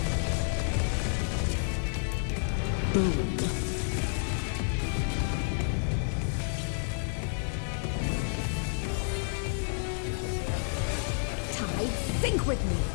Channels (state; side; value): silent; right; digital silence